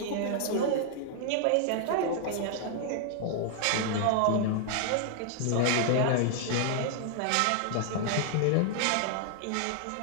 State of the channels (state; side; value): different; both; correlation -0.01